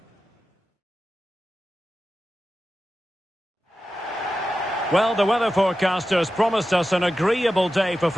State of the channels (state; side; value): normal; both; correlation 0.93